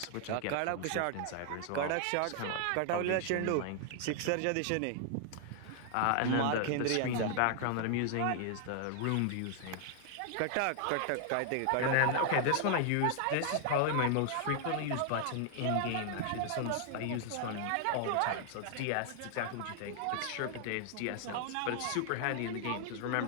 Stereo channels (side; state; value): both; different; correlation 0.00